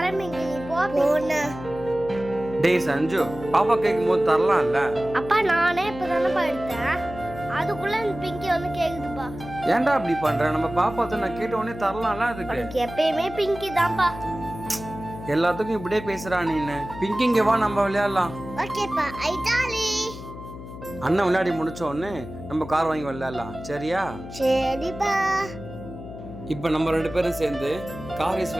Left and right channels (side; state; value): left; noise; hum, 13 dB below the sound